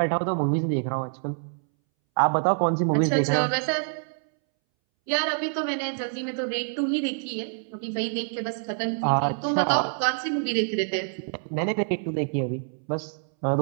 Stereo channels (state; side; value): silent; left; 61 dB below the other